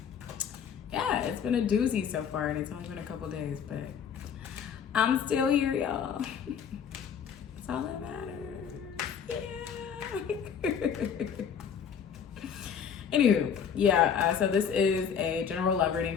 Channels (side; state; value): right; quieter; 7.4 dB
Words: Yeah, it's been a doozy so far, and it's only been a couple days, but I'm still here, y'all. That's all that matters. Yeah. Anywho, so this is a general love reading